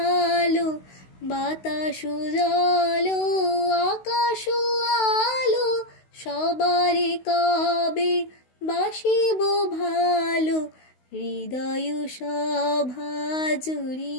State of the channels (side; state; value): right; late; 16 ms